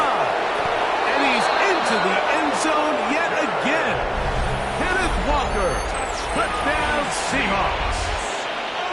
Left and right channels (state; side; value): identical; both; correlation 1.00